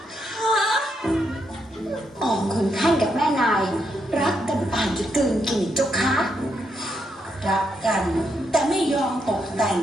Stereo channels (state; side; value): normal; both; correlation 0.79